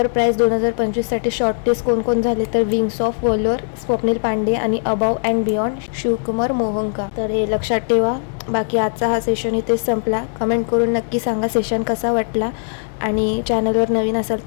prize 2025साठी शॉर्टलिस्ट कोण झाले? तर wings of valour Swapnil Pande आणि above and beyond Shivkumar Mohanka. तर हे लक्षात ठेवा. बाकी आजचा हा सेशन इथेच संपला. कमेंट करून नक्की सांगा सेशन कसा वाटला आणि चॅनलवर नवीन असाल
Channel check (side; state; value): right; silent; digital silence